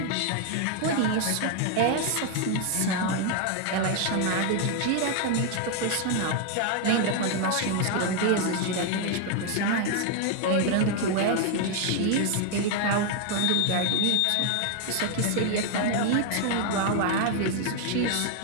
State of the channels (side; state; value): both; different; correlation 0.01